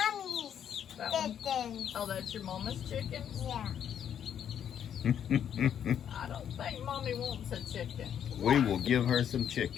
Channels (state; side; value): quieter; right; 9.1 dB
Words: That one? chickens. Oh, that's your mama's chicken? Yeah. I don't think mommy wants a chicken. We will give her some